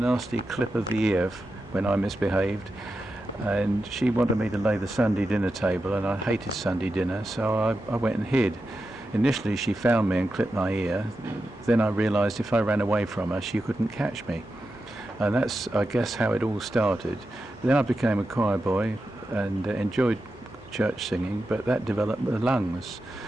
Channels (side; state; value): both; normal; correlation 0.90